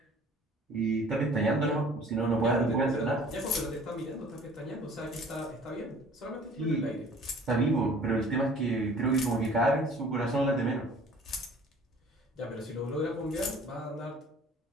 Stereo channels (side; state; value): both; normal; correlation 0.50